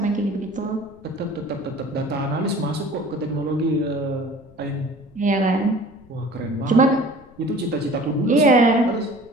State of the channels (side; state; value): left; noise; rumble, 25 dB below the sound